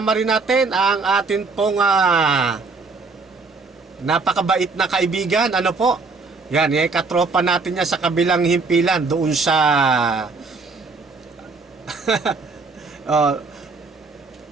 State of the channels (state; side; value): quieter; left; 4.1 dB